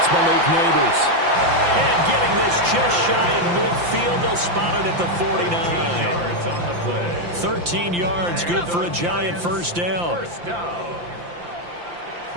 Malik Neighbors. And getting this just shy of midfield, they'll spot it at the 49. 13 yards on the play. 13 yards, good for a Giant first down. First down.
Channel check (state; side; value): late; left; 5.8 ms